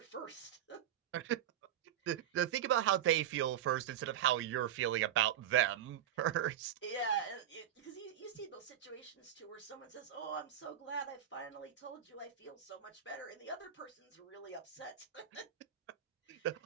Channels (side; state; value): left; quieter; 10.5 dB